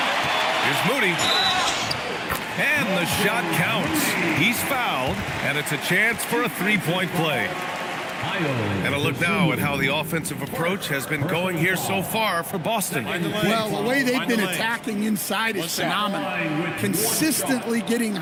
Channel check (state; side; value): identical; both; correlation 1.00